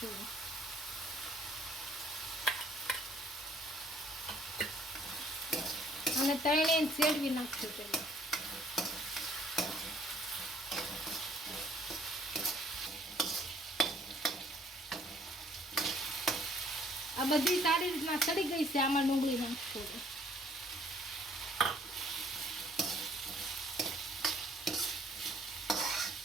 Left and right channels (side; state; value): both; normal; correlation 0.60